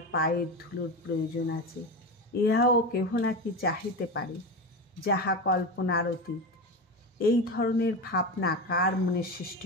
পায়ের ধুলোর প্রয়োজন আছে, ইহাও কেহ নাকি চাহিতে পারে, যাহা কল্পনার অতীত। এই ধরনের ভাবনা কার মনে সৃষ্টি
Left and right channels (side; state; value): both; normal; correlation 0.21